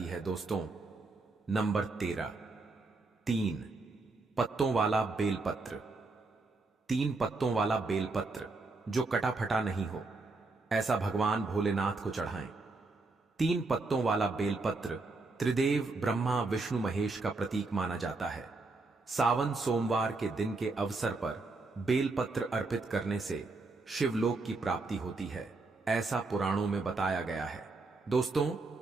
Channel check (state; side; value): quieter; left; 3.6 dB